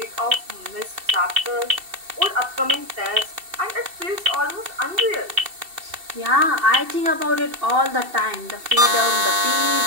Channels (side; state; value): left; late; 2.7 ms